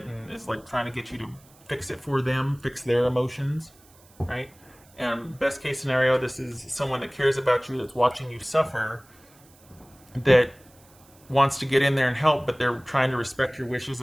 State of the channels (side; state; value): right; noise; hiss, 28 dB below the sound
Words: and is like trying to get you to fix it for them, fix their emotions, right? And best case scenario, this is someone that cares about you, that's watching you suffer, that wants to get in there and help, but they're trying to respect your wishes